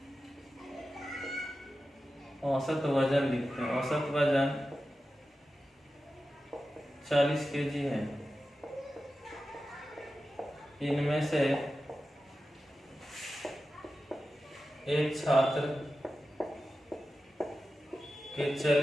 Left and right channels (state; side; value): normal; both; correlation 0.93